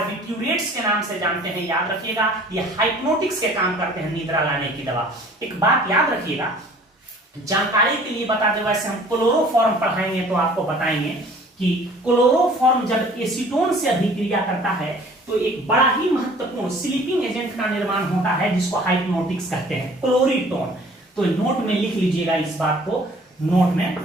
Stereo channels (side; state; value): both; normal; correlation 0.51